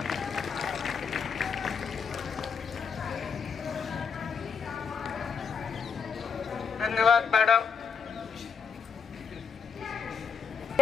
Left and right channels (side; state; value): right; quieter; 6.2 dB